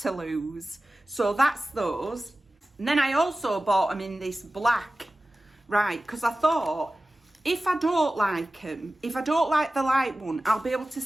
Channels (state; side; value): normal; both; correlation 0.96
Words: lose? So that's those. And then I also bought them in this black, right? Because I thought, if I don't like them, if I don't like the light one, I'll be able to